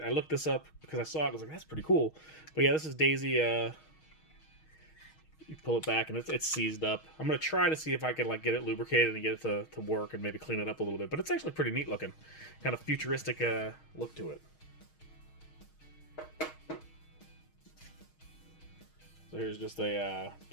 I looked this up because I saw it. I was like, that's pretty cool. But yeah, this is Daisy. You pull it back and it's seized up. I'm gonna try to see if I can like get it lubricated and get it to work and maybe clean it up a little bit. But it's actually pretty neat looking, kind of futuristic look to it. So here's just a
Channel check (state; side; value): late; right; 6.4 ms